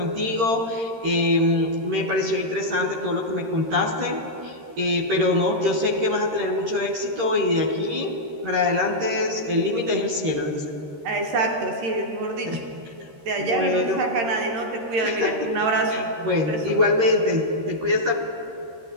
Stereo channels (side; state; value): left; late; 13 ms